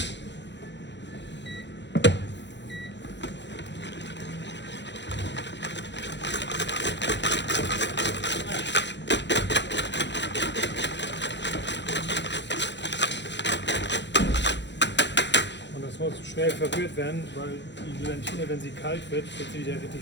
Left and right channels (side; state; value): right; late; 0.52 ms